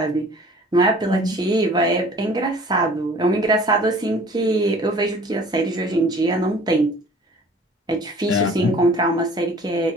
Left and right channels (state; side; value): normal; both; correlation 0.50